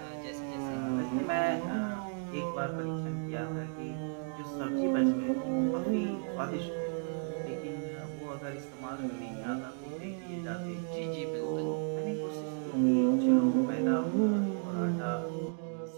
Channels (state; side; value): silent; left; 55 dB below the other